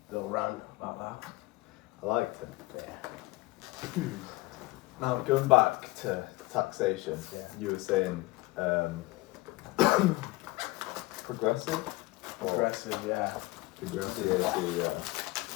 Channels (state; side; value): quieter; right; 20.7 dB